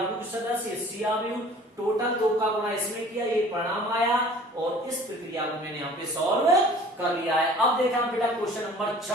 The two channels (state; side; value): normal; both; correlation 0.48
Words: के सदस्य, सी आव्यूह, टोटल 2 का गुणा इसमें किया, ये परिणाम आया, और इस प्रक्रिया को मैंने यहाँ पे सॉल्व कर लिया है। अब देखा बेटा क्वेश्चन नंबर